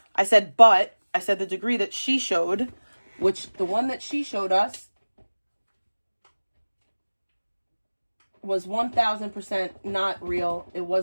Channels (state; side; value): inverted; both; correlation -1.00